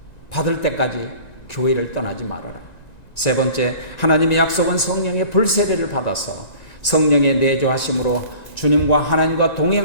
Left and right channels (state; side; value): late; right; 1.9 ms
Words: 받을 때까지 교회를 떠나지 말아라. 세 번째, 하나님의 약속은 성령의 불세례를 받아서 성령의 내조하심으로 주님과 하나님과